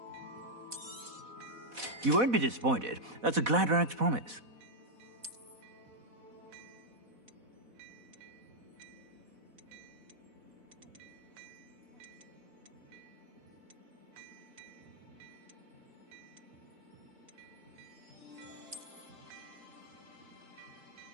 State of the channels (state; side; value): late; left; 4.1 ms